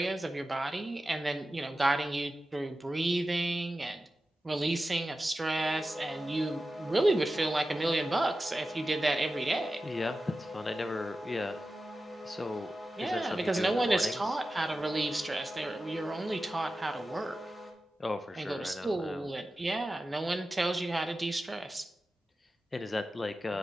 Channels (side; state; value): both; normal; correlation 0.93